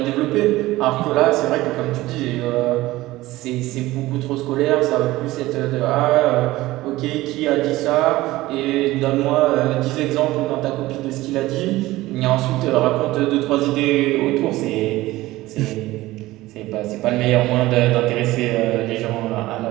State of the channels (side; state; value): left; quieter; 17.8 dB